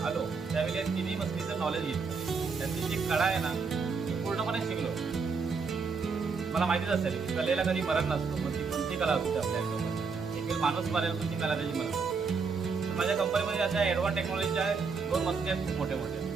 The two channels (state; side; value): quieter; left; 5.1 dB